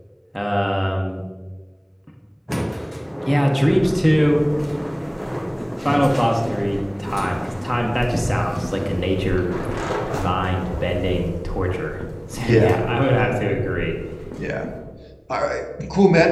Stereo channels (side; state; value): both; identical; correlation 1.00